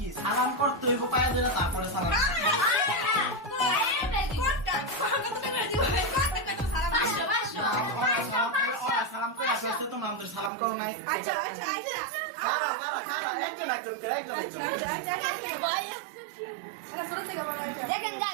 সালাম করতে হইব পায়ে ধরে, তারপরে সালাম সালাম করে আসতে তোমরা আমাদের সালাম করো নাই। দেখেন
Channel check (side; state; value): left; drops out; at 10.5 s